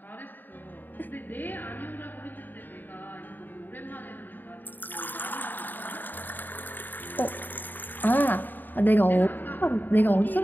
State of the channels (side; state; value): right; late; 0.090 ms